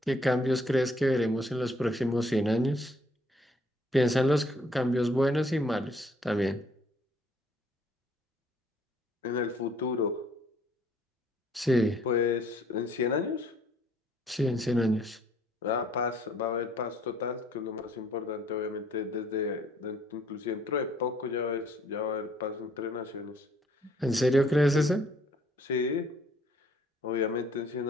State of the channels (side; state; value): both; normal; correlation 0.63